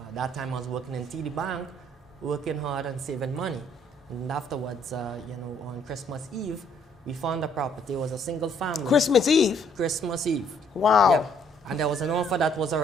That time I was working in TD Bank, working hard and saving money. And afterwards, on Christmas Eve, we found a property. It was a single family. Christmas Eve? Christmas Eve. Wow. Yep. And there was an offer that was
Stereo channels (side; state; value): both; normal; correlation 0.65